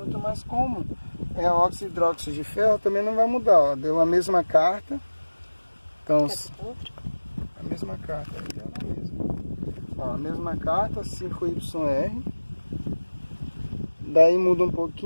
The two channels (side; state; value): both; inverted; correlation -1.00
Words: mas como é óxido hidróxido de ferro, também não vai mudar. Ó. Deu a mesma carta. Então, a mesma carta, deu na mesma. Ó, a mesma carta, 5YR. Daí muda um